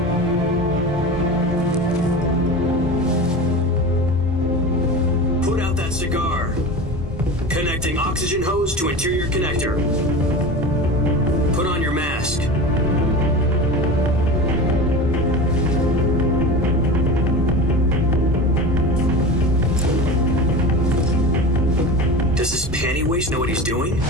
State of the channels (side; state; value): both; normal; correlation 0.30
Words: Cigar. Connecting oxygen hose to interior connector. Put on your mask. Does this panty waste know what he's doing?